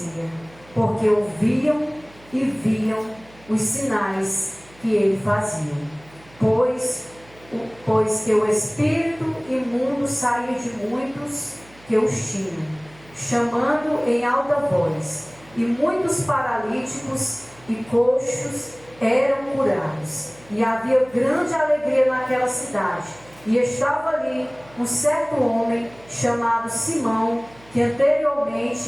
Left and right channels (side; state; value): right; noise; hum, 25 dB below the sound